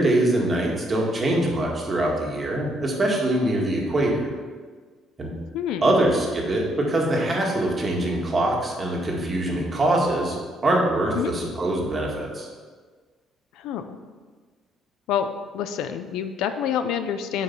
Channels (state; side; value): normal; both; correlation 0.70